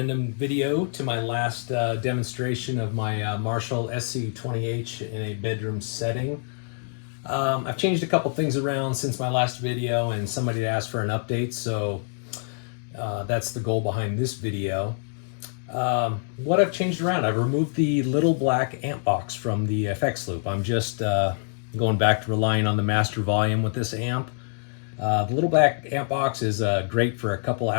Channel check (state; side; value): silent; right; digital silence